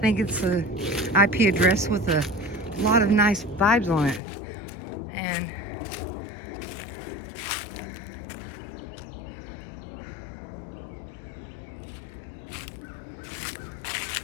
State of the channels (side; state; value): right; drops out; at 4.2 s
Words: it's a IP address with a lot of nice vibes on it. And